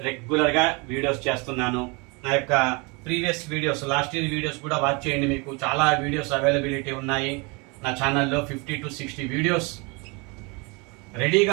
రెగ్యులర్గా వీడియోస్ చేస్తున్నాను. నా యొక్క previous videos, last year videos కూడా వాచ్ చేయండి. మీకు చాలా వీడియోస్ అవైలబిలిటీ ఉన్నాయి నా ఛానల్లో. 50 to 60 వీడియోస్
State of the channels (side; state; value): left; quieter; 29.3 dB